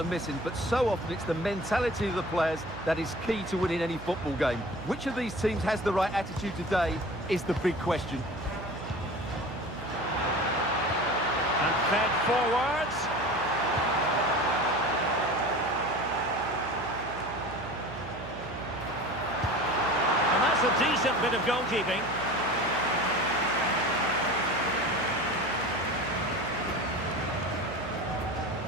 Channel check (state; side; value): noise; right; hum, 12 dB below the sound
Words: missing, but so often it's the mentality of the players that is key to winning any football game. Which of these teams has the right attitude today is the big question. And fed forwards. And that's a decent bit of goalkeeping.